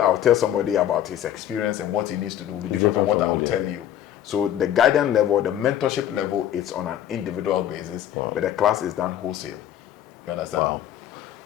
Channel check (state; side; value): quieter; right; 11.0 dB